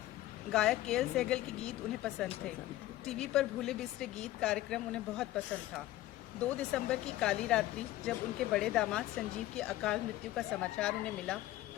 गायक KL सहगल के गीत उन्हें पसंद थे। टीवी पर भूले बिसरे गीत कार्यक्रम उन्हें बहुत पसंद था। 2 दिसंबर की काली रात्रि जब उनके बड़े दामाद संजीव की अकाल मृत्यु का समाचार उन्हें मिला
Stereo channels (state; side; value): quieter; right; 15.5 dB